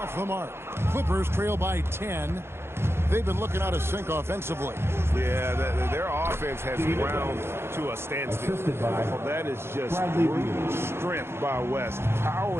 the mark. Clippers trail by 10. They've been looking out of sync offensively. Yeah, their offense has ground to a standstill. That is just brute strength by West,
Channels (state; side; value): late; left; 0.12 ms